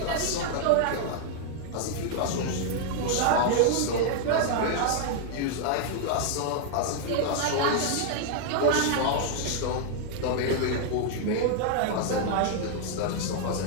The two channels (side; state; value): both; different; correlation 0.00